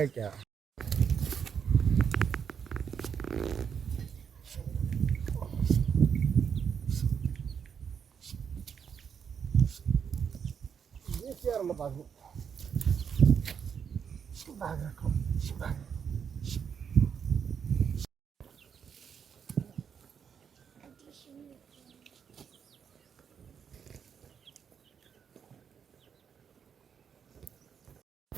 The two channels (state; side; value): quieter; left; 7.2 dB